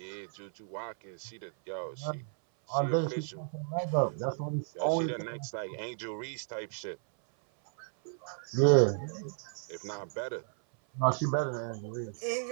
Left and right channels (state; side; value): silent; left; 55 dB below the other